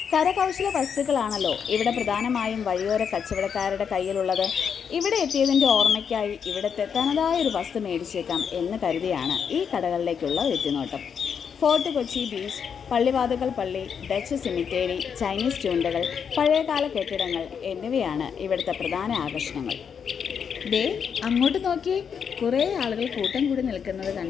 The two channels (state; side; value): quieter; right; 7.1 dB